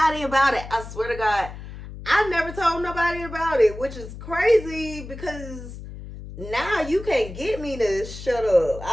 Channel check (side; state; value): left; noise; hum, 12 dB below the sound